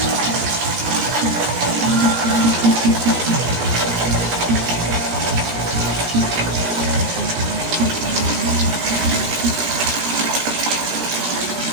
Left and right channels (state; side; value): late; left; 18 ms